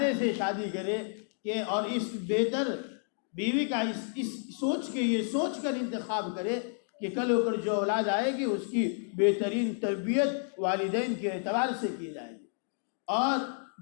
سے شادی کرے کہ اور اس بہتر بیوی کا اس سوچ کر انتخاب کرے کہ کل ہو کر جو اولاد آئے گی اس کی بہترین تربیت والدین کے اعتبار سے کی جائے گی۔ اور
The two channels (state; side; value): silent; right; 57 dB below the other